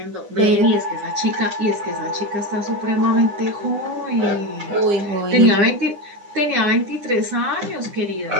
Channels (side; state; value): left; late; 9.8 ms